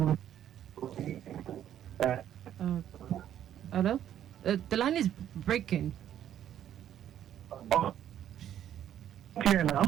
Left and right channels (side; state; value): left; quieter; 10.7 dB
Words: Hello? The line is breaking. Clear